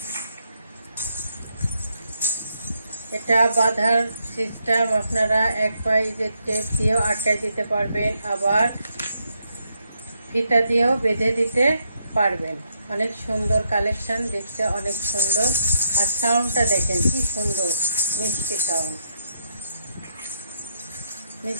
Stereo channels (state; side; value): inverted; both; correlation -0.78